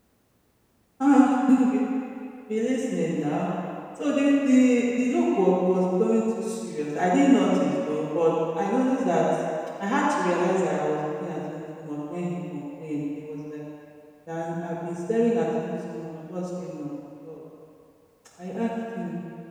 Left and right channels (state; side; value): identical; both; correlation 1.00